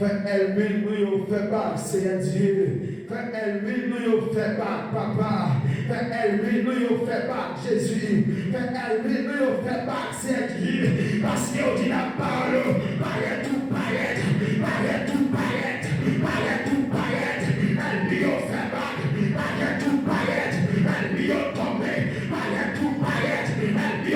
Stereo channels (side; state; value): both; identical; correlation 1.00